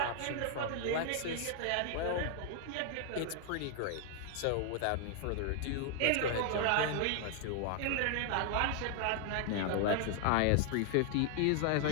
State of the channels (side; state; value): both; different; correlation 0.00